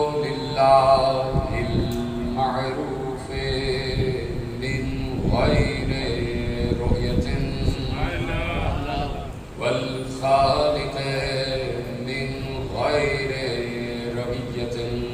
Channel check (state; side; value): identical; both; correlation 1.00